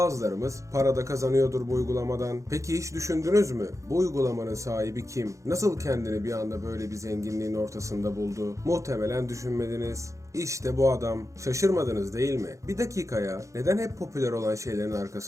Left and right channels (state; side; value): late; left; 0.15 ms